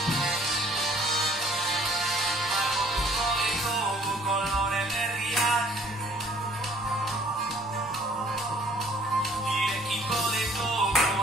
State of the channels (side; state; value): both; normal; correlation 0.57